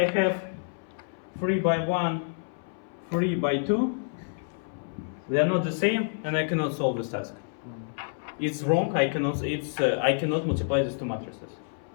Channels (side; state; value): right; silent; 59 dB below the other